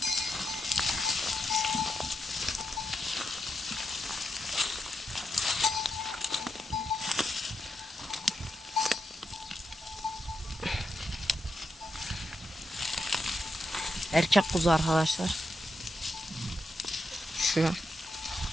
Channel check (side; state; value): both; normal; correlation 0.84